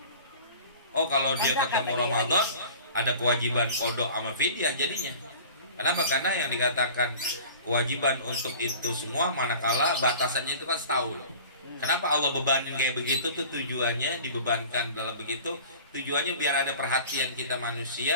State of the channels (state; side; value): inverted; both; correlation -0.42